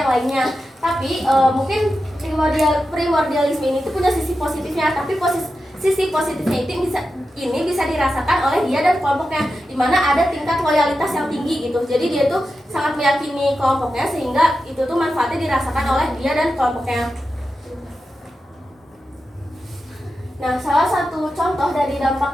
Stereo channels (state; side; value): normal; both; correlation 0.90